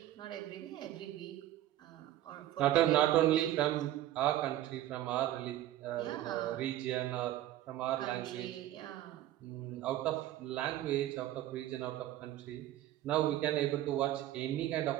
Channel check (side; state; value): left; quieter; 13.7 dB